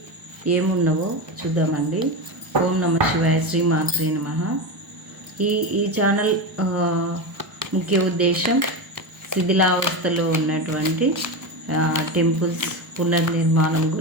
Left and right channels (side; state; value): left; late; 1.0 ms